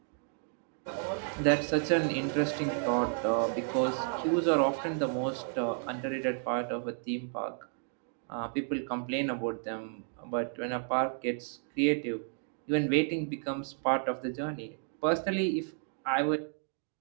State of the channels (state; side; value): silent; left; 56 dB below the other